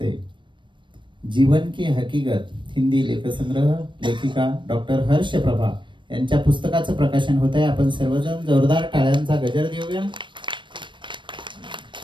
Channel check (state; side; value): late; left; 0.23 ms